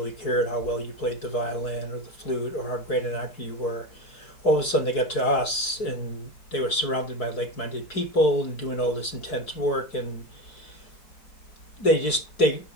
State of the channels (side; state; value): right; late; 4.6 ms